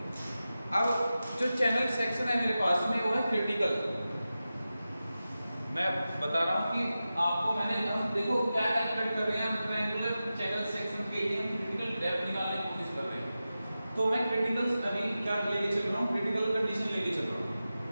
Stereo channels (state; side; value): inverted; both; correlation -0.93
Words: अब जो चैनल सेक्शन है मेरे पास में वो है क्रिटिकल, मैं बता रहा हूँ कि आपको मैंने, हम देखो क्या कैलकुलेट कर रहे हैं, हम ट्रायंगुलर चैनल सेक्शन के लिए क्रिटिकल डेप्थ निकालने की कोशिश कर रहे हैं, तो मैं क्रिटिकल अभी क्या लेके चल रहा हूँ, क्रिटिकल कंडीशन लेके चल रहा हूँ,